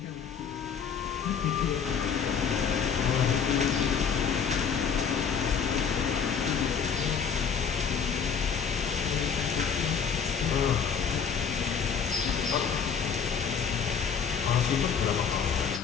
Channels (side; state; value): right; quieter; 6.7 dB